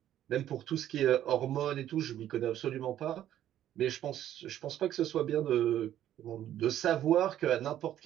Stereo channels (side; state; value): left; quieter; 11.8 dB